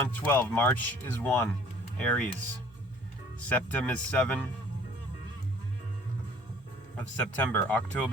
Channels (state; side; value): noise; right; hum, 27 dB below the sound